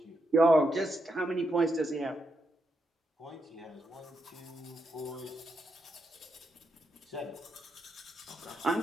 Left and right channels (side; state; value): both; normal; correlation 0.82